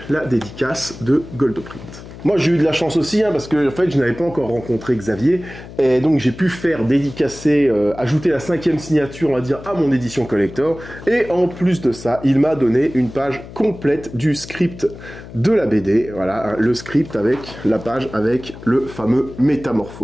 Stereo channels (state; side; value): noise; left; hum, 15 dB below the sound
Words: la dédicace de Goldoprint. Moi j'ai eu de la chance aussi, hein, parce que en fait je n'avais pas encore rencontré Xavier, et donc j'ai pu faire dédicacer, ajouter la 5e signature, on va dire, à mon édition collector, et en plus de ça, il m'a donné une page complète du script de la BD, voilà, le script avec la page avec le fameux